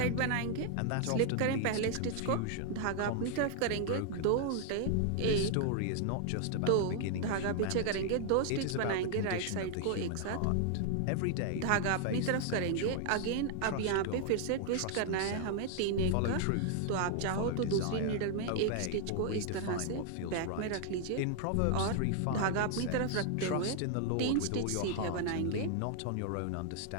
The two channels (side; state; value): both; different; correlation 0.00